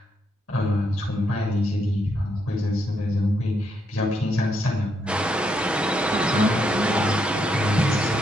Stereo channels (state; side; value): normal; both; correlation 0.77